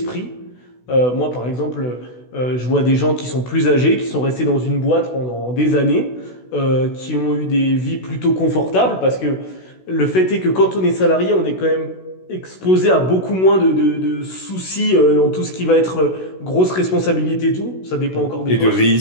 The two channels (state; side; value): late; right; 16 ms